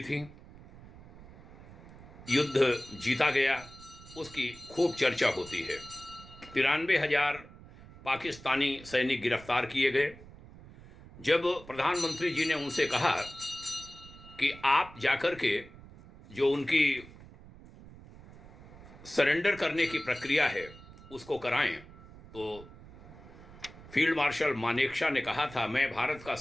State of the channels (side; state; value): right; noise; rumble, 19 dB below the sound